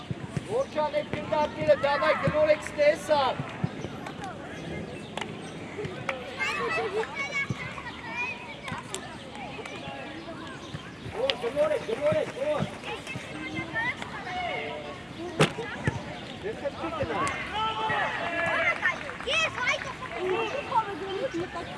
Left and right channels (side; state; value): both; identical; correlation 1.00